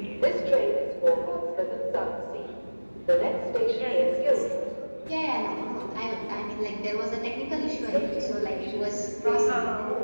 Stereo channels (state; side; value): inverted; both; correlation -1.00